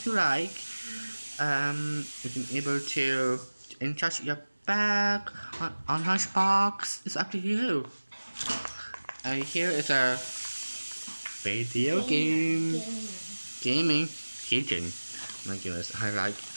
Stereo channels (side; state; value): both; inverted; correlation -1.00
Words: you like. You can able to charge your bag on lunchbox. It's up to you. And here is a video game gaming keychain. My goodness, I like